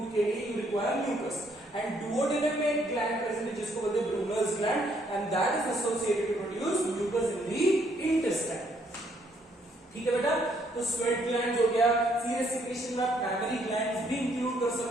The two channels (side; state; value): both; normal; correlation 0.69